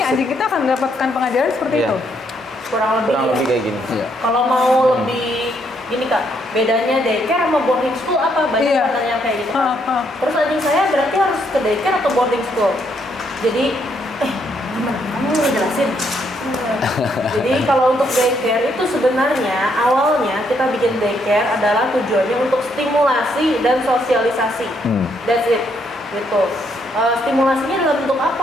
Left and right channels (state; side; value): normal; both; correlation 0.73